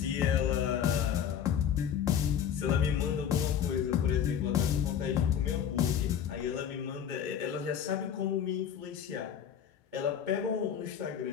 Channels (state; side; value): quieter; right; 8.7 dB